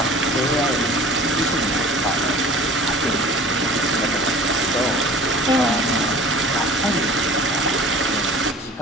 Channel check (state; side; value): normal; both; correlation 0.43